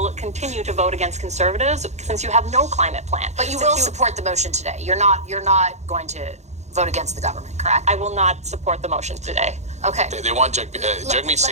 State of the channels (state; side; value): late; left; 0.33 ms